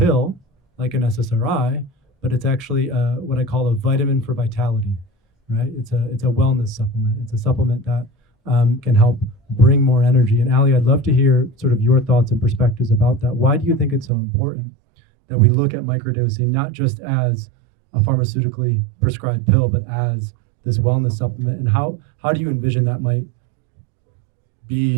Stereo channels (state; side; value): drops out; left; at 14.1 s